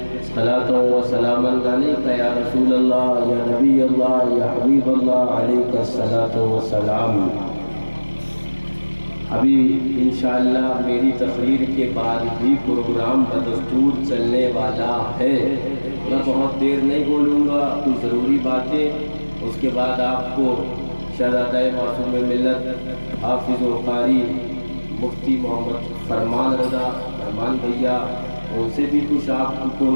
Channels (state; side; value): inverted; both; correlation -1.00